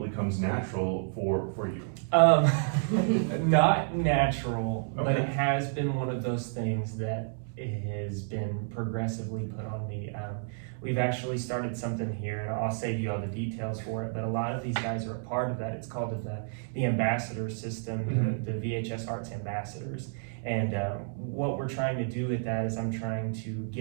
comes natural for you. Not natural, Okay. but it has been one of those things that has been progressively put on me. We've actually started something here, and I'll save you all the details for it, but a lot of these guys are a part of that. It's called the ambassador system, the VHS Arts Ambassadors. And what we're trying to do with that is I'm trying to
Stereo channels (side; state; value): left; silent; 58 dB below the other